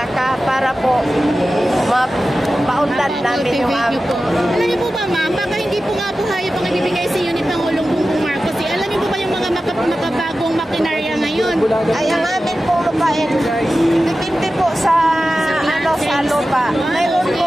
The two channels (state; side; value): normal; both; correlation 0.94